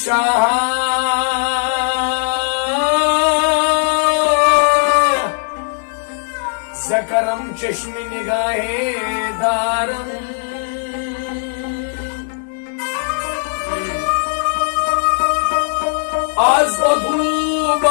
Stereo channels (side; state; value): right; silent; digital silence